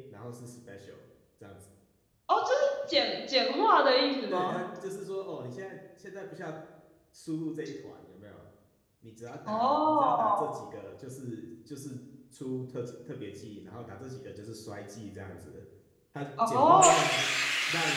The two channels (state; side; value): identical; both; correlation 1.00